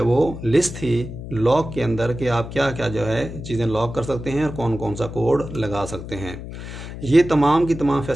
वो लिस्ट थी लॉक के अंदर कि आप क्या क्या जो है चीज़ें लॉक कर सकते हैं और कौन कौन सा कोड लगा सकते हैं। ये तमाम की तमाम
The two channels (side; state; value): left; noise; hum, 10 dB below the sound